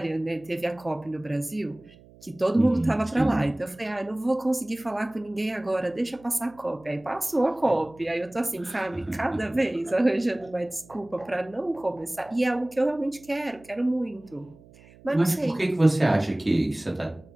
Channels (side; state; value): right; noise; hum, 24 dB below the sound